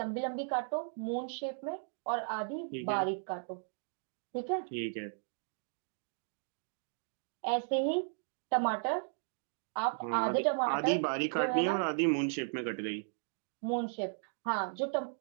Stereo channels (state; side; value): silent; left; digital silence